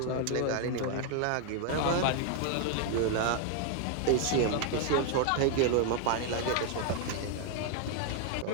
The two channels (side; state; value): both; different; correlation 0.00